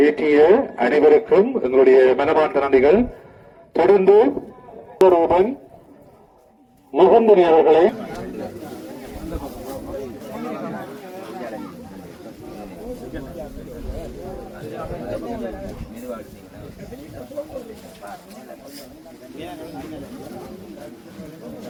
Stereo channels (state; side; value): identical; both; correlation 1.00